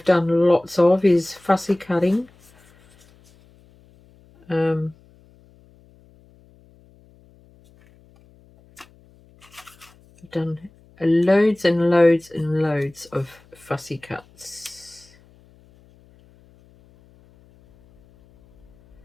done lots of is fussy cutting. I've done loads and loads and loads of fussy cuts.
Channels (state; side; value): noise; left; hum, 29 dB below the sound